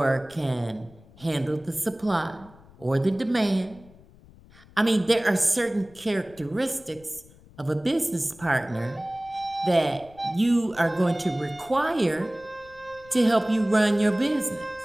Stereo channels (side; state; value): left; noise; rumble, 24 dB below the sound